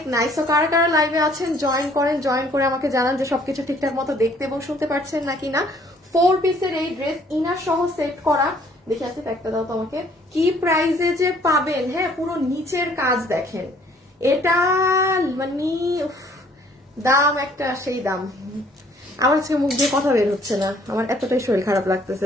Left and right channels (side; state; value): both; normal; correlation 0.60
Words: নাইস। তো কারা কারা লাইভে আছেন জয়েন করেন, জয়েন করে আমাকে জানান যে সবকিছু ঠিকঠাক মতো দেখতে এবং শুনতে পাচ্ছেন নাকি না। 4 পিসের এই ড্রেস ইনার সহ সেট করা, দেখে আসি একটা দাও তোমাকে কি প্রাইসে যে পাবেন। হ্যাঁ পুরো নিচের কাজ দেখেন, এটা মানে দাম একটা সেই দাম। আমার আজকে মুখ দিয়ে কথা বের হচ্ছে না, আমার এতটাই শরীর খারাপ